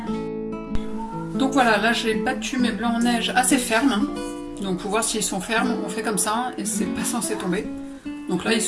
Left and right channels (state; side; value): identical; both; correlation 1.00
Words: Donc voilà, là j'ai battu mes blancs en neige assez fermes. Donc pour voir s'ils sont fermes, on fait comme ça et c'est pas censé tomber. Donc là ils